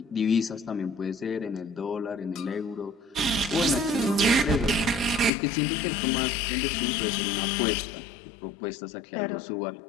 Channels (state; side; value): drops out; right; at 5.3 s